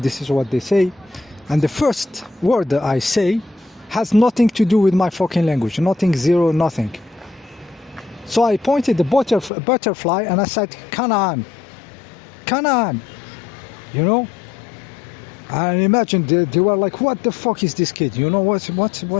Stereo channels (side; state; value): right; drops out; at 9.5 s